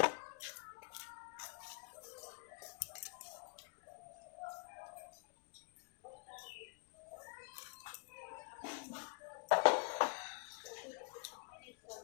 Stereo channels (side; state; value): right; quieter; 34.9 dB